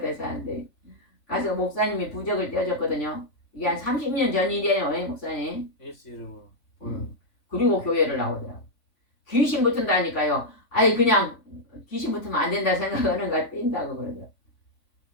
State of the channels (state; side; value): late; right; 3.5 ms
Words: 사는데 가서 목사님이 부적을 떼어줬거든요. 이게 한 30년 전 일이에요. 목사님. 예수 이름으로 보는. 그리고 교회를 나오더라고. 귀신 붙은다니까요. 아니 그냥 귀신 붙으면 안 된다 생각하는 거 뛴다고 그러더라고.